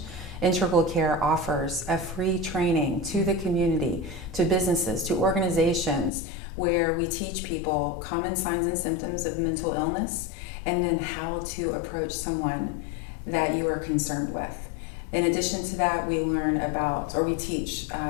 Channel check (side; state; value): right; drops out; at 6.1 s